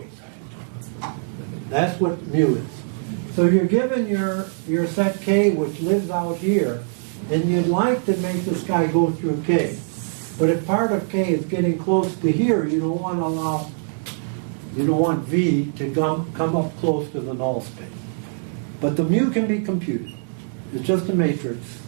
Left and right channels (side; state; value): left; silent; digital silence